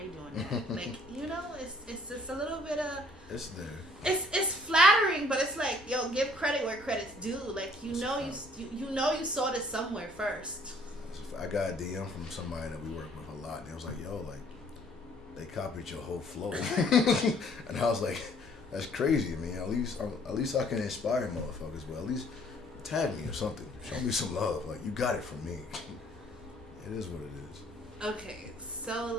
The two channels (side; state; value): both; normal; correlation 0.60